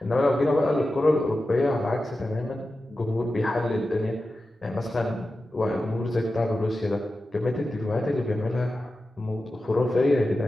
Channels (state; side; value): normal; both; correlation 0.92